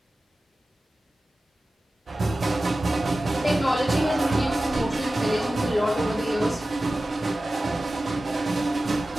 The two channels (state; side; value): normal; both; correlation 0.95